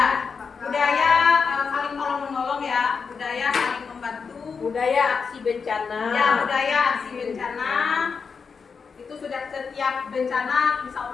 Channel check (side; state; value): right; quieter; 5.6 dB